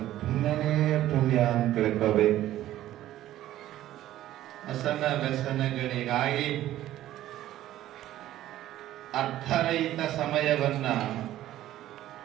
ಪುಣ್ಯನೇ ಪುಣ್ಯ ಅಂತ ತಿಳ್ಕೋಬೇಕು. ಅಸನ ವ್ಯಸನಗಳಿಗಾಗಿ ಅರ್ಥರಹಿತ ಸಮಯವನ್ನ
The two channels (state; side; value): quieter; left; 13.7 dB